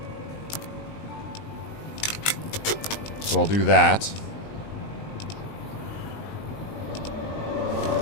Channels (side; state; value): right; late; 19 ms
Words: So I'll do that.